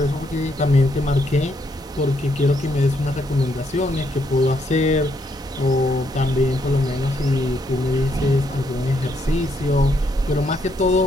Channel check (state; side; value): normal; both; correlation 0.74